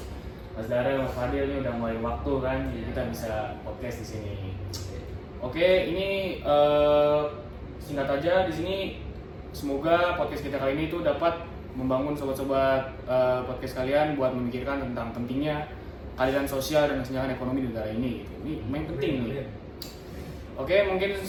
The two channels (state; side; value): identical; both; correlation 1.00